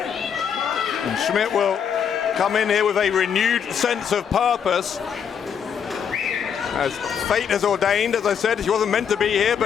And Smidt will come in here with a renewed sense of purpose. As fate has ordained, as I said, she wasn't meant to be here,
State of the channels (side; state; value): right; quieter; 7.6 dB